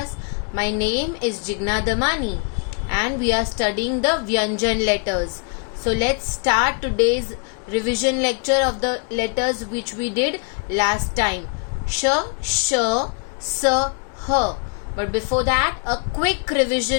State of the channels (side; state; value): right; quieter; 36.9 dB